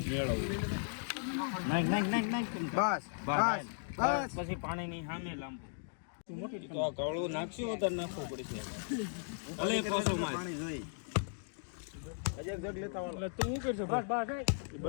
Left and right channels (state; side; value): silent; right; digital silence